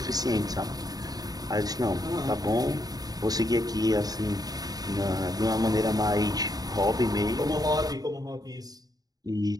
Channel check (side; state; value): left; late; 0.18 ms